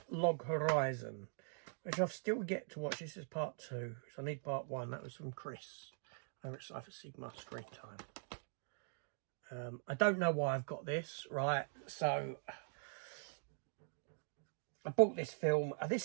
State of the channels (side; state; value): left; silent; digital silence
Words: Log Horizon, which I've still yet to watch. This is part 2, so I need part 1. That was from Chris over at Cypher Sigma Screen Time. I don't know why I've got this, right? So I bought this film.